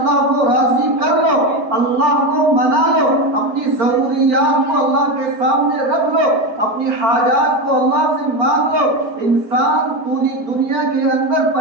کو راضی کر لو، اللہ کو منا لو، اپنی ضروریات کو اللہ کے سامنے رکھ لو، اپنی حاجات کو اللہ سے مانگ لو۔ انسان پوری دنیا کے اندر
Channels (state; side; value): late; left; 4.4 ms